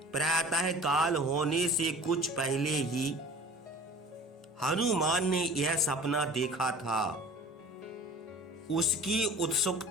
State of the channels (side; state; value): both; normal; correlation 0.43